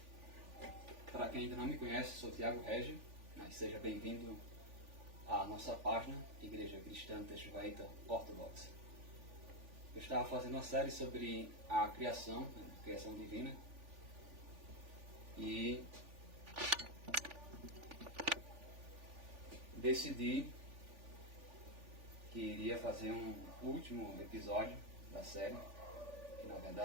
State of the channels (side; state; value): left; late; 3.5 ms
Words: Para quem ainda não me conhece, sou Thiago Régio, mas seja bem-vindo à nossa página Igreja Cristã Teixuaíta Ortodoxa. Eu estava fazendo uma série sobre a criação, a criação divina, e decidi que iria fazer um último episódio da série, que na